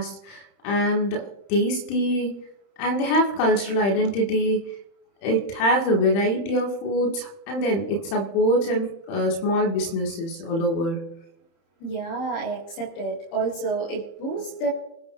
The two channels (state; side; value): late; right; 31 ms